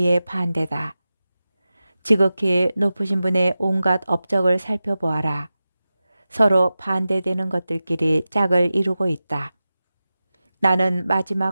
반대다. 지극히 높으신 분의 온갖 업적을 살펴보아라. 서로 반대되는 것들끼리 짝을 이루고 있다. 나는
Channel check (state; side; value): inverted; both; correlation -0.95